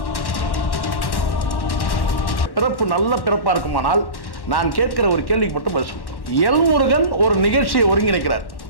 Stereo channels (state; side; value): late; right; 1.1 ms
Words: பிறப்பு நல்ல பிறப்பாக இருக்குமானால் நான் கேட்கிற ஒரு கேள்விக்கு மட்டும் பதில் சொல்கிறேன். எல்முருகன் ஒரு நிகழ்ச்சியை ஒருங்கிணைக்கிறார்.